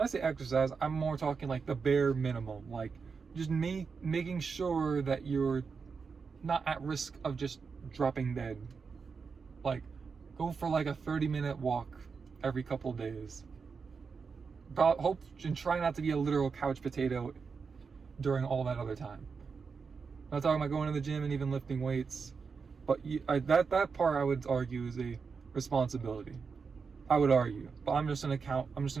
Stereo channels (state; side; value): quieter; left; 5.3 dB